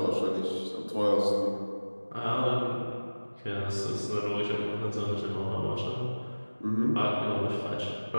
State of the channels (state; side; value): inverted; both; correlation -1.00